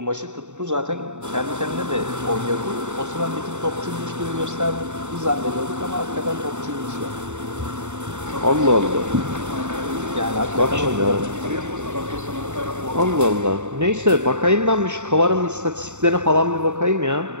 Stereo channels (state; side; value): late; left; 0.84 ms